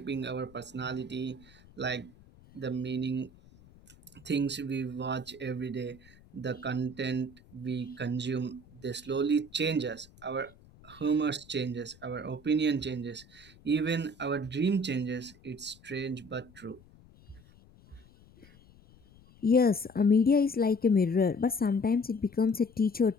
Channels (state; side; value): noise; left; rumble, 25 dB below the sound